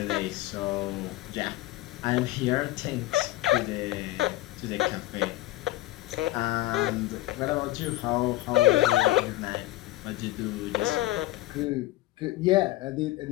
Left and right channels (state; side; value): quieter; right; 17.1 dB